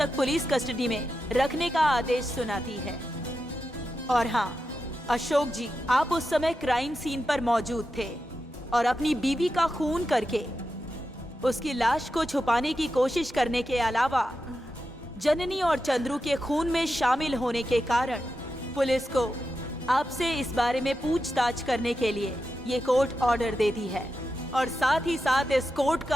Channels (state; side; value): normal; both; correlation 0.89